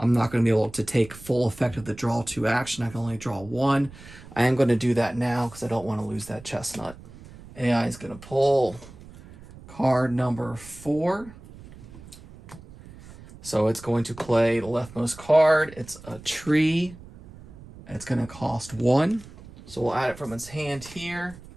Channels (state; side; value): noise; right; rumble, 19 dB below the sound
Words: not going to be able to take full effect of the draw 2 action. I can only draw 1. I am going to do that now because I don't want to lose that chestnut. AI is going to pull card number 4. So it's going to play the leftmost card. It's a tree. It's going to cost 1. So we'll add it from its hand here.